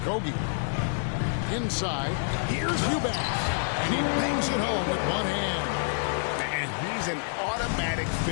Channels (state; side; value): silent; right; digital silence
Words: Inside. Here's Eubanks. And he bangs it home with one hand. And he's an automatic